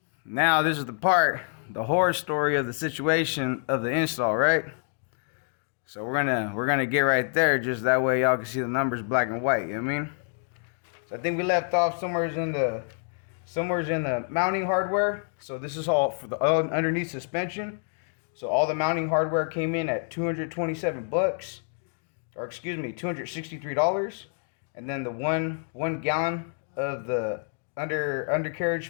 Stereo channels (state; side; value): silent; right; 60 dB below the other